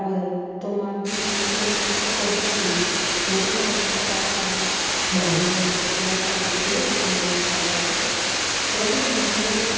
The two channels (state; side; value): identical; both; correlation 1.00